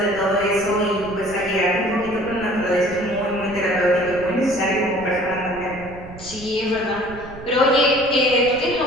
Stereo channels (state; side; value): noise; right; rumble, 16 dB below the sound